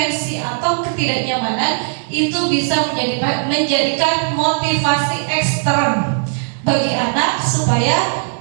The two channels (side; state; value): left; silent; digital silence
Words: atau ketidaknyamanan, itu bisa menjadikan motivasi ekstern bagi anak supaya